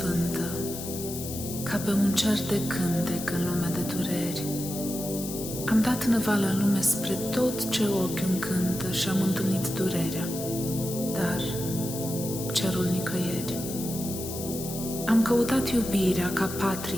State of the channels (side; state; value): left; noise; hiss, 9 dB below the sound